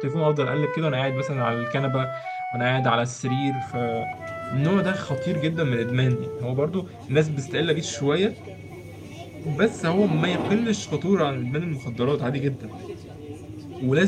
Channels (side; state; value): both; identical; correlation 1.00